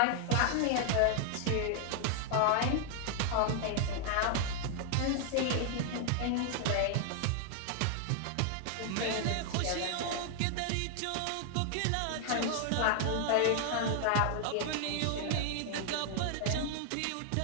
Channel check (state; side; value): different; both; correlation 0.00